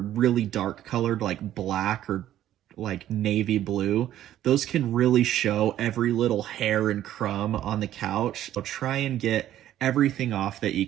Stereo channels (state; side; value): quieter; left; 12.3 dB